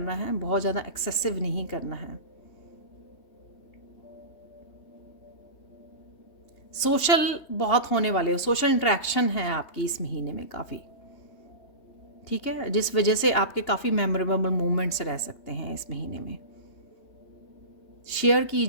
है, बहुत ज़्यादा एक्सेसिव नहीं करना है। सोशल बहुत होने वाले हो, सोशल इंटरेक्शन है आपकी इस महीने में काफ़ी, ठीक है, जिस वजह से आपके काफ़ी मेमोरेबल मोमेंट्स रह सकते हैं इस महीने में। शेयर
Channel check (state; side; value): late; right; 3.2 ms